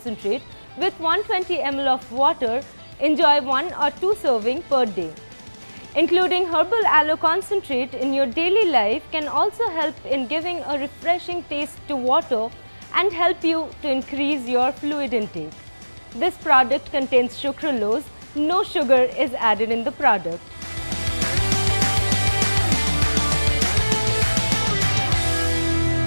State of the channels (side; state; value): both; inverted; correlation -1.00